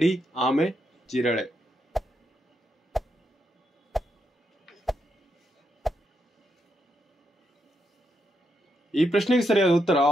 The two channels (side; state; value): both; normal; correlation 0.81